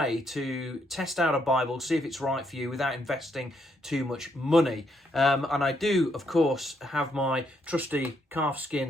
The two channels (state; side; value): normal; both; correlation 0.75